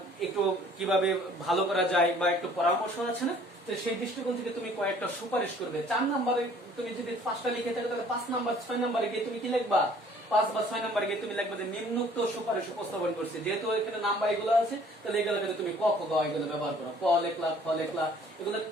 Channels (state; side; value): normal; both; correlation 0.55